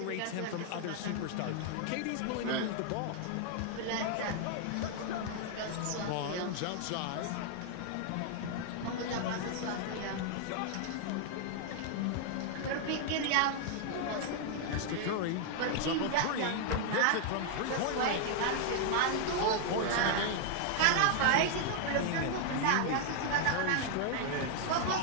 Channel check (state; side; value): different; both; correlation 0.00